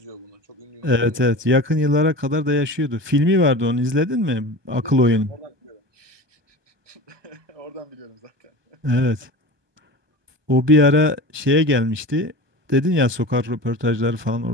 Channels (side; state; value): left; late; 1.2 ms